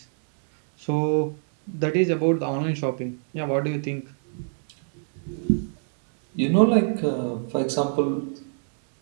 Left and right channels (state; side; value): silent; left; digital silence